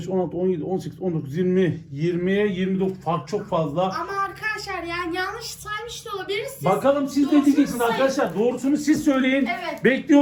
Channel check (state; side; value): identical; both; correlation 1.00